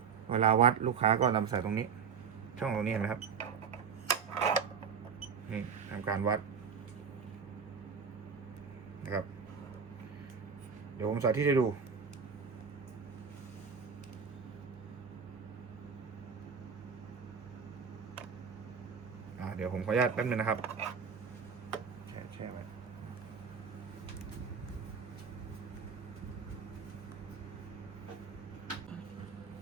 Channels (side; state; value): left; quieter; 6.4 dB